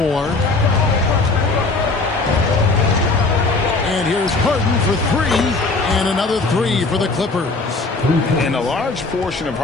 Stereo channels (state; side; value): quieter; right; 3.6 dB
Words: And here's Harden for 3. And another 3 for the Clippers. And a large portion of